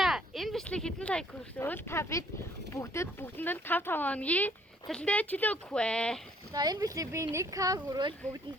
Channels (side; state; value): both; normal; correlation 0.62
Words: энэ бичлэг хэдэн лайк хүрсөөл та бид бүгдэнд 5 хоногийн цалинтай чөлөө өгөх вэ. За энэ бичлэг би 1k хүрвэл